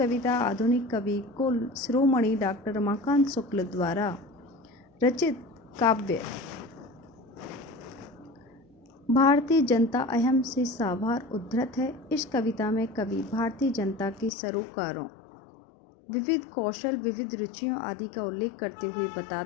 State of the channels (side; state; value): right; drops out; at 14.3 s